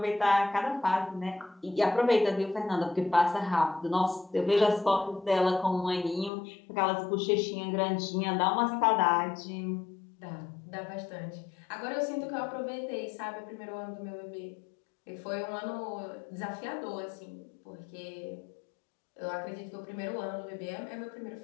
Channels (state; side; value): drops out; right; at 6.3 s